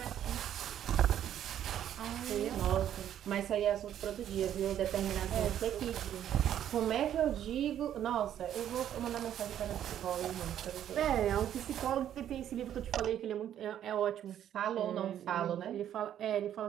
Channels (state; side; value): quieter; left; 10.6 dB